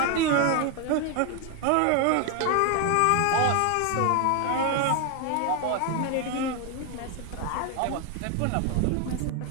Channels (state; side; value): different; both; correlation 0.01